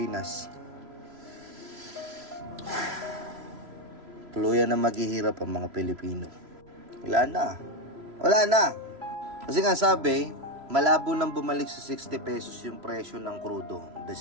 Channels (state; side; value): late; left; 3.0 ms